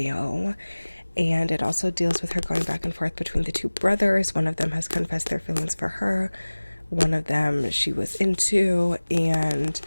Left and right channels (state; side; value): inverted; both; correlation -1.00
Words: And it also deals with her going back and forth between the two brothers. One of them has confessed their feelings for her, one of them she was into, and